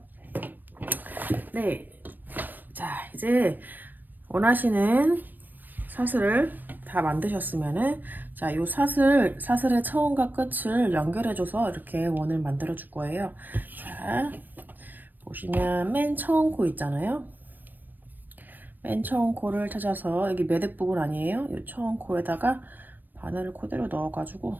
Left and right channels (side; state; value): left; late; 0.090 ms